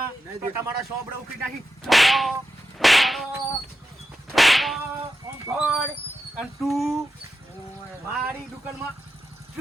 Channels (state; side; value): normal; both; correlation 0.89